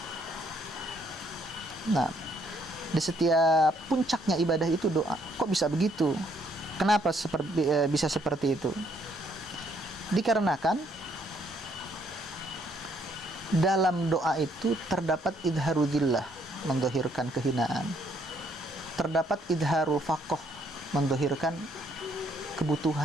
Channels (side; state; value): both; normal; correlation 0.68